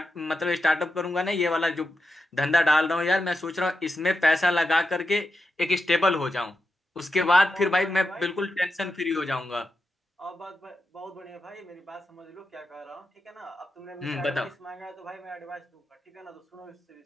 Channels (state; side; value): normal; both; correlation 0.88